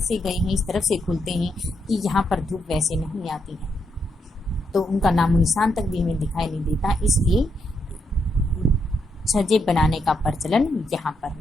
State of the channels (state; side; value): normal; both; correlation 0.79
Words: गए हैं, इस तरफ से खुलते हैं कि यहाँ पर धूप वैसे नहीं आती है, तो उनका नामो निशान तक भी हमें दिखाई नहीं देता, इसलिए छज्जे बनाने का प्रचलन यहाँ पर